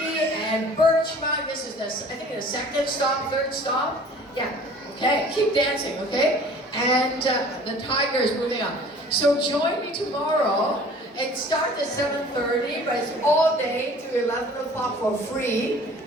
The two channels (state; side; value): normal; both; correlation 0.49